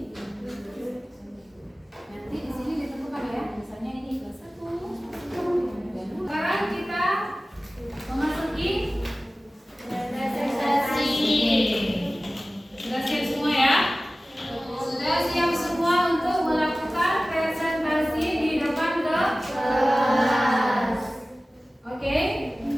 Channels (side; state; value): both; normal; correlation 0.97